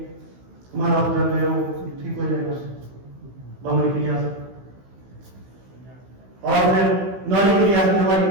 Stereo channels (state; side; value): late; left; 16 ms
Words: हमारा उदर जो है वो ठीक हो जाएगा उससे, बमनी क्रिया से। और फिर नौली क्रिया से हमारी